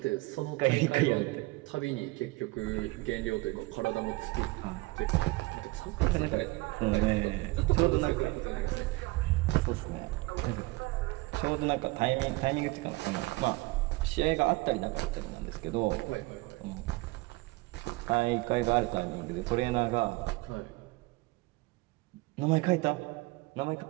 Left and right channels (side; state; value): left; quieter; 22.8 dB